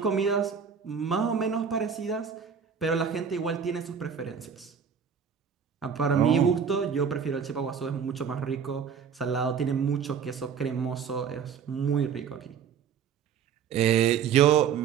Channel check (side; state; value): left; quieter; 7.2 dB